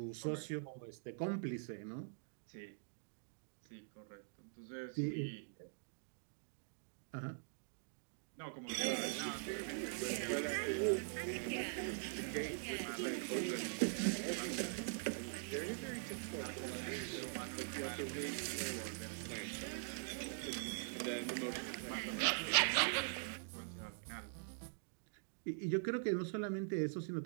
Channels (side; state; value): left; silent; digital silence